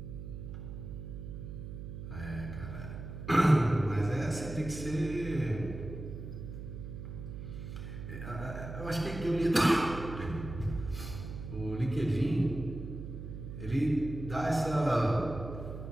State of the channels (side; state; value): right; noise; hum, 9 dB below the sound